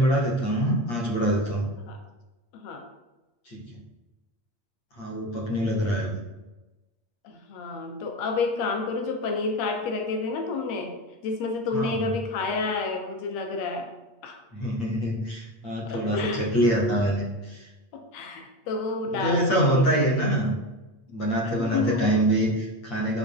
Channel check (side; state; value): right; late; 8.5 ms